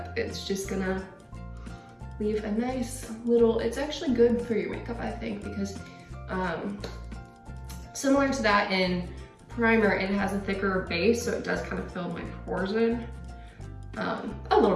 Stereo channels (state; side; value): identical; both; correlation 1.00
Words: It's just gonna leave a nice little, it's actually good for your makeup, I think, because similar to that in primer, it has a thicker base, so it does kind of fill my pores in a